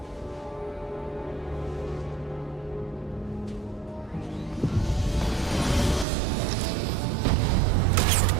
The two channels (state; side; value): drops out; left; at 6.1 s